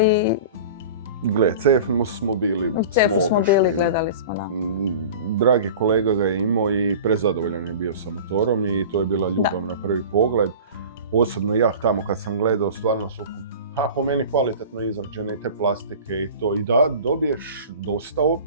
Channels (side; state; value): both; inverted; correlation -0.37